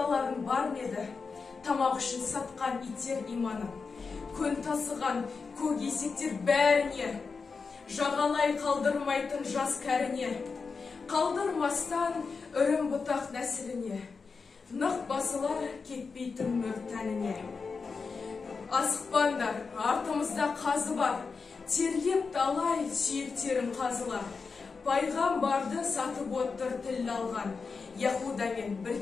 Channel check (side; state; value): right; quieter; 4.8 dB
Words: бар меді, тамақ үшін сатқан иттер иманым. Көн тасыған көк есектер бәріне, жағалай қалдырмайтын жас кәріне. Қалдырмастан үрім бұтақ нәсіліне, нық басылар кетпейтін мөр тәніне. Асықпандар, артымызда қазы бар, тергеп талай сүйектерім қазылар. Пайғамбарды сатып отыр тіл алған, Яһудамен